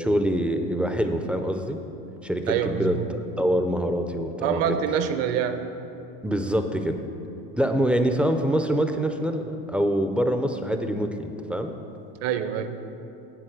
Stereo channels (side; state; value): both; normal; correlation 0.67